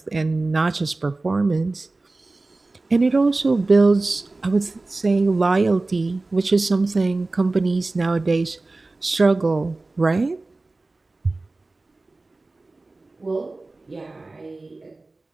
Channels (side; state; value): left; quieter; 3.2 dB